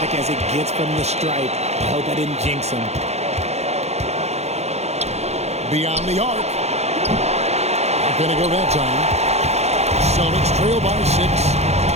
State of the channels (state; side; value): late; left; 0.31 ms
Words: as it gets from the stripe. I hope I didn't jinx him. Beyond the arc. Not going to go that time. Celtics trail by 6.